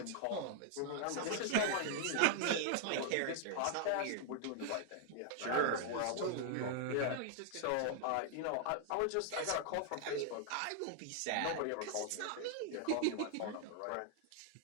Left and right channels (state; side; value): different; both; correlation 0.00